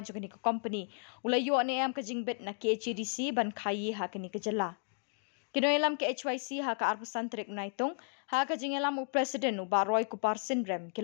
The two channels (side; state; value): right; silent; 55 dB below the other